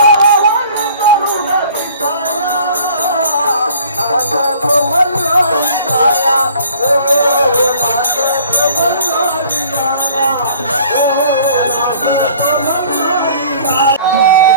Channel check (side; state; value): both; inverted; correlation -0.51